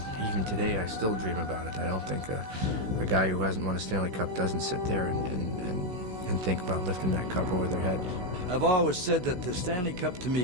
today, I still dream about it. I don't think a guy who hasn't won a Stanley Cup doesn't sit there and think about lifting that cup over their head. I've always said that the Stanley Cup to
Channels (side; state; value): left; late; 17 ms